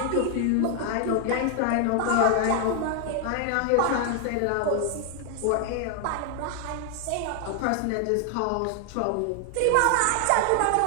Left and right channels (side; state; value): both; different; correlation 0.00